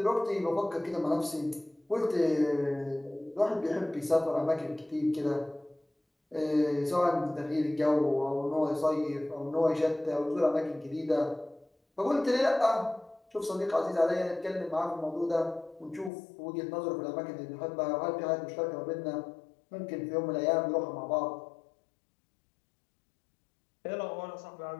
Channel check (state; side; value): drops out; right; at 16.1 s